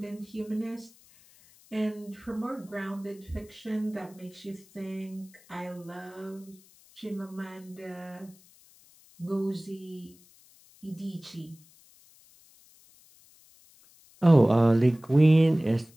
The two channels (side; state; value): left; noise; hiss, 27 dB below the sound